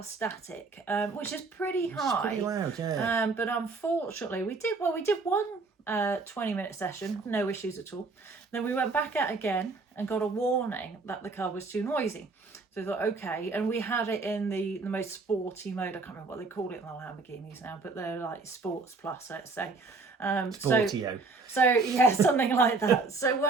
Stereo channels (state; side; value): quieter; left; 3.9 dB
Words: static, which is pretty high. It's pretty loud, yeah. But unfortunately we did one 20-minute session, no issues at all. Then we went back out again and got a warning that the car was too noisy. So we thought, okay, and we had it in the most sporty mode. I can't remember what they call it in the Lamborghinis now, but they're like Sports Plus, let's say. Sportio. So yeah, something like that.